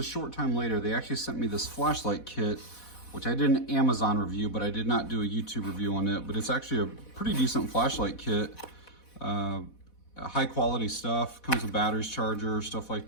short time later, they actually sent me this flashlight kit, which I did an Amazon review, but I did not do a YouTube review on it. But it's actually a pretty decent flashlight kit. High quality stuff, comes with batteries, charger, stuff like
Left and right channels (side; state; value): right; late; 4.1 ms